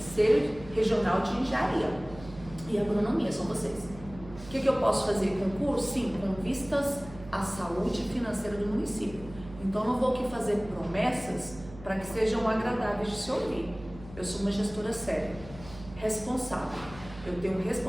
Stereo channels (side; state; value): right; noise; hum, 16 dB below the sound